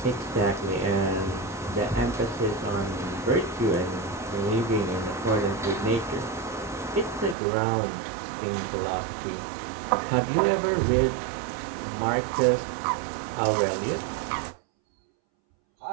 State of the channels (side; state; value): left; drops out; at 7.4 s